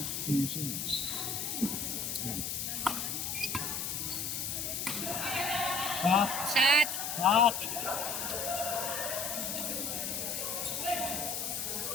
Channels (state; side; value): noise; left; hiss, 2 dB below the sound